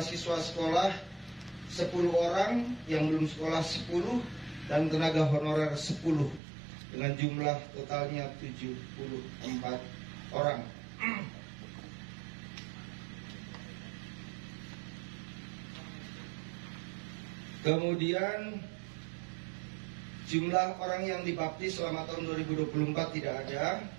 siswa sekolah 10 orang, yang belum sekolah 10, dan tenaga honorer 10, dengan jumlah totalnya 74 orang. Kemudian jumlah orang yang dibaptis selama tahun 2024 tidak ada.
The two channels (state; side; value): drops out; left; at 6.4 s